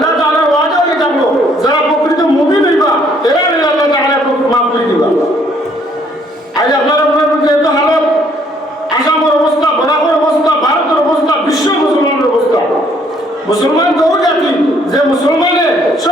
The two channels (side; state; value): both; normal; correlation 0.65